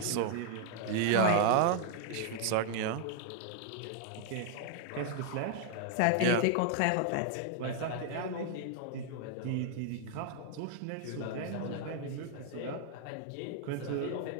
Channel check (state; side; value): different; both; correlation 0.00